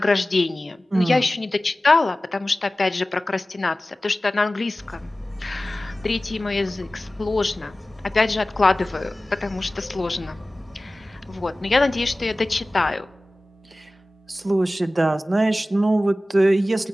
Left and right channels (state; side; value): normal; both; correlation 0.97